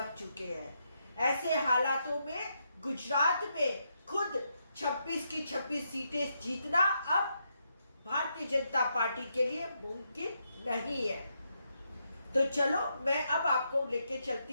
चुके हैं। ऐसे हालातों में गुजरात में खुद 26 की 26 सीटें जीतना अब भारतीय जनता पार्टी के लिए मुमकिन नहीं है। तो चलो मैं अब आपको लेके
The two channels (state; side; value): inverted; both; correlation -0.81